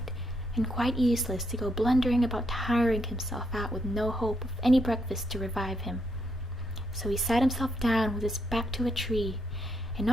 and quite useless to go blundering about tiring himself out with no hope of any breakfast to revive him. So he sat himself down with his back to a tree, and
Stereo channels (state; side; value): normal; both; correlation 0.78